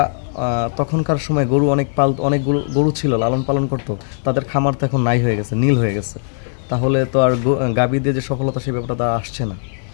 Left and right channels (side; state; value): right; silent; 67 dB below the other